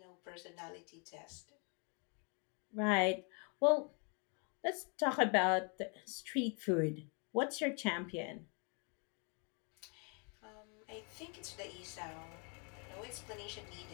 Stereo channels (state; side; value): quieter; right; 36.9 dB